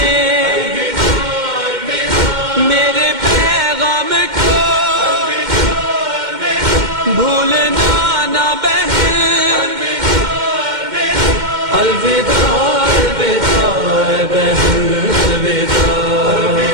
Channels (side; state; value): left; late; 2.1 ms